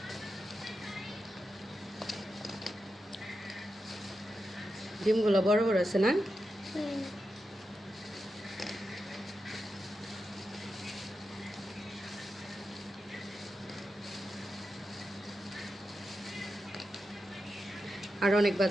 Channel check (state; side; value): normal; both; correlation 0.89